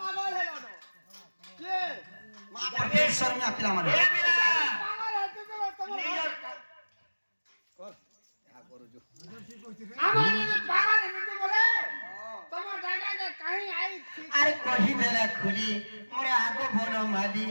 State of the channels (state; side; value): inverted; both; correlation -1.00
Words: হলো না কে মা পরমেশ্বর মে আপিলা মানে এ মিলা পাগল হতে তো তোমার নিজের কর যা করো जो আমার যদি পাগল হতে বলে তোমার জায়গাকে কাহি আই আরে কহি দেলা খুলি মোরে আগো বন মালি